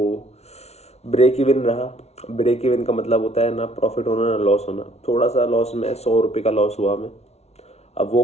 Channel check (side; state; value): right; late; 0.31 ms